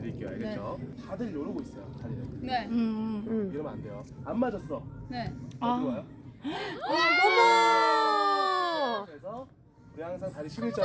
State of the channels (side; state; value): both; identical; correlation 1.00